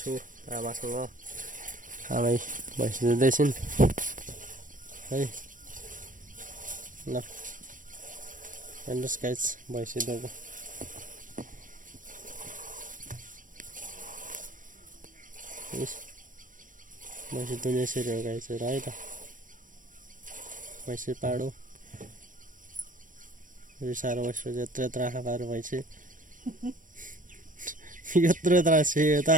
आमासँग आमै भैँसी दुहुँदैछिन् है ल हेर्नुहोस् गाइज भैँसी दुहुँको भैँसी दुहुने यसरी हो गाइज है त भैँसी पाडो साह्रो बस्यो यत्रो यत्रो आँखा पारेर भैँसी यत्रो यत्रो सेयो त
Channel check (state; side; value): late; left; 0.38 ms